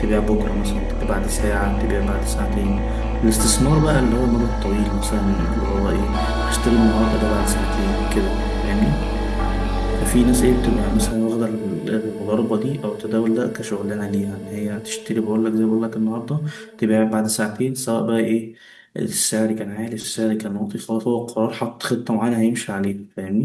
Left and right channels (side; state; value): both; identical; correlation 1.00